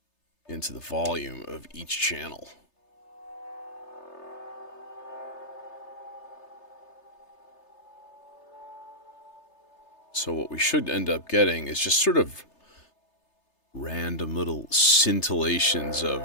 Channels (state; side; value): late; right; 3.3 ms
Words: into the volume of each channel. So what we should end up getting is just sort of random little scintillations